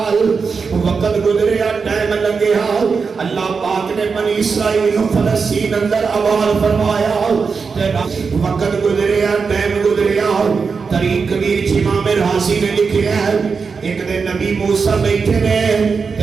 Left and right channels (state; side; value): quieter; left; 5.2 dB